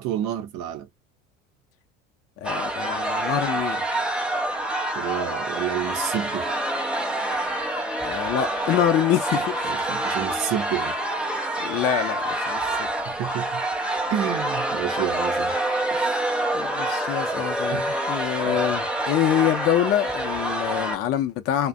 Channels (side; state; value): both; normal; correlation 0.45